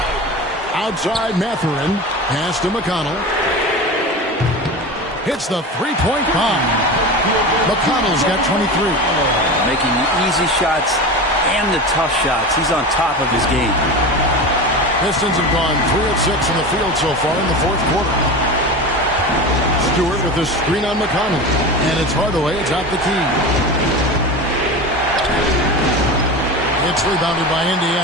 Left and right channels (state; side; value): normal; both; correlation 0.28